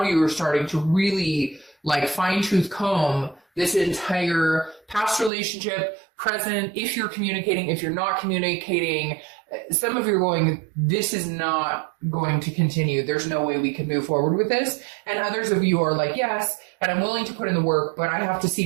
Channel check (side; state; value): left; drops out; at 5.3 s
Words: you are starting to really like fine-tooth comb this entire past relationship, present, if you're communicating, if you're not communicating. Some of you are going, this is not going to continue. There's no way we can move forward with this. And others of you are like, yes, and I'm willing to put in the work, but I have to